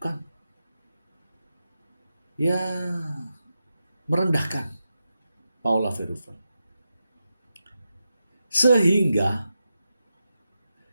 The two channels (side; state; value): both; inverted; correlation -0.89